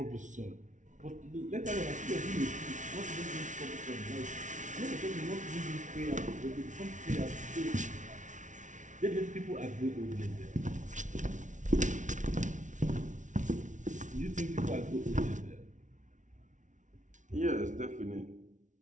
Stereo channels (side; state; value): left; late; 0.37 ms